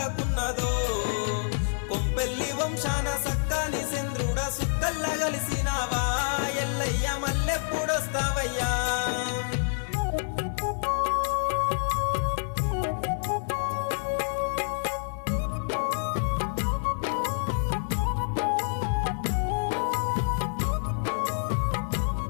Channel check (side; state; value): right; silent; digital silence